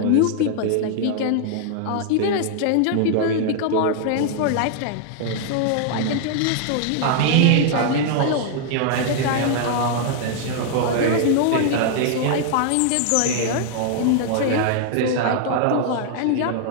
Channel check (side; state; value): both; different; correlation 0.00